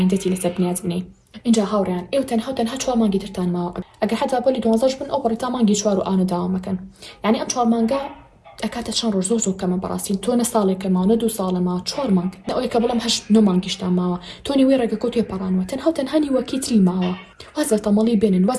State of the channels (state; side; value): identical; both; correlation 1.00